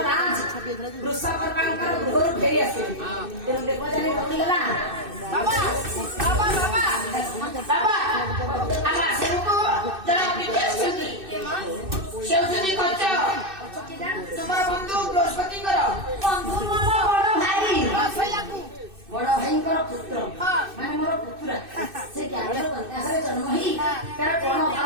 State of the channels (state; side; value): late; left; 2.6 ms